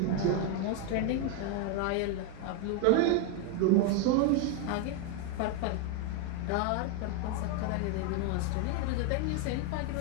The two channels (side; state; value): both; different; correlation 0.01